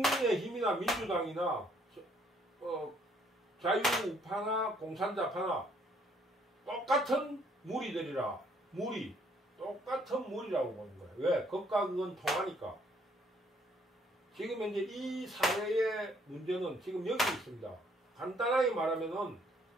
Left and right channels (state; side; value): normal; both; correlation 0.66